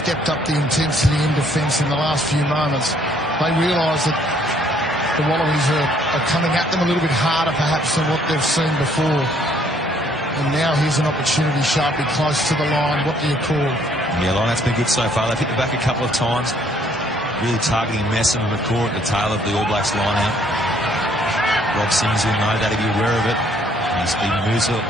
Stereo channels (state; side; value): normal; both; correlation 0.64